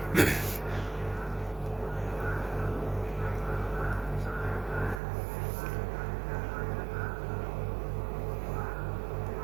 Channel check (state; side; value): drops out; left; at 5.0 s